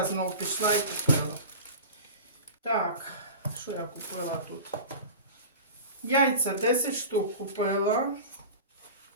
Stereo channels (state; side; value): inverted; both; correlation -0.34